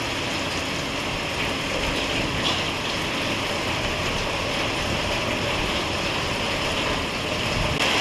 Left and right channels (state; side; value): identical; both; correlation 1.00